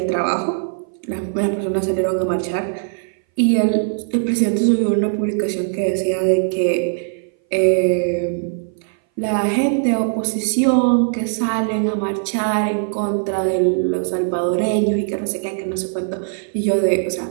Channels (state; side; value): silent; left; 60 dB below the other